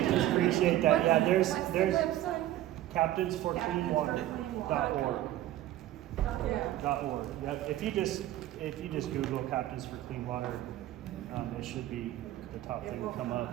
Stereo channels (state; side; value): quieter; left; 14.0 dB